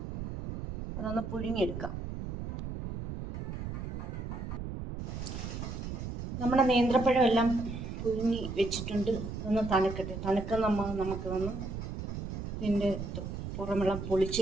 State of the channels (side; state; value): right; noise; rumble, 6 dB below the sound